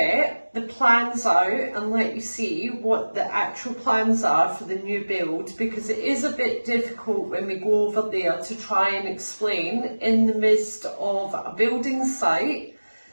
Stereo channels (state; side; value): inverted; both; correlation -1.00